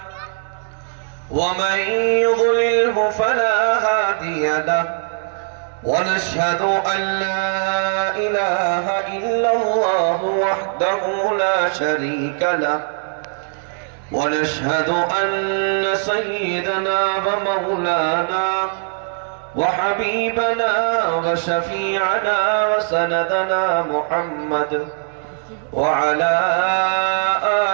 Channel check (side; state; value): left; silent; digital silence